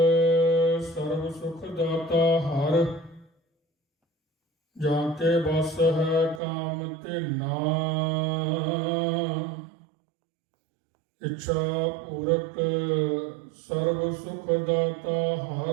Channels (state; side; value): drops out; left; at 6.4 s